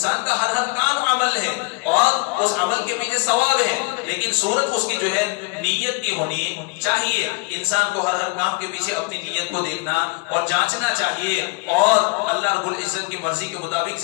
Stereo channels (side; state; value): right; quieter; 28.7 dB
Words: کا ہر کام عمل ہے، اور اس عمل کے پیچھے ثواب ہے، لیکن صورت اس کی جو ہے نیت کی ہونی چاہیے۔ انسان کو ہر کام کے پیچھے اپنی نیت کو دیکھنا اور جانچنا چاہیے، اور اللہ رب العزت کی مرضی کے مطابق